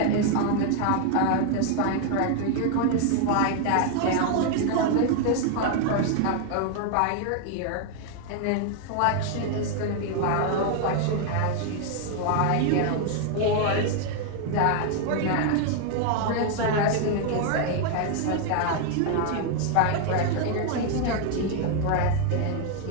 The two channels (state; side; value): different; both; correlation 0.00